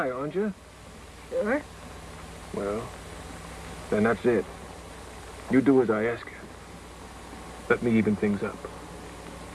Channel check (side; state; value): both; identical; correlation 1.00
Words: aren't you? Sure. Well, then that's it. You do as I ask you. Let me even things up.